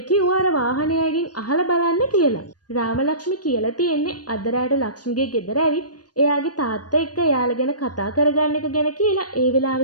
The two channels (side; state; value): right; late; 0.69 ms